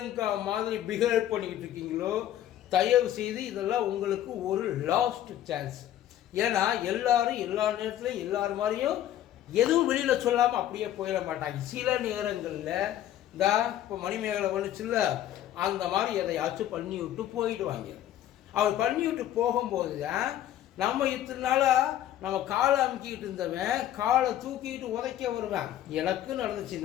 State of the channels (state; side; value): quieter; right; 12.2 dB